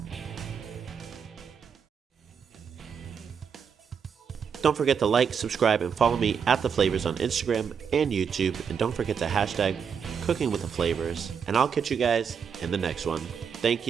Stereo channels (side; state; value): left; quieter; 6.8 dB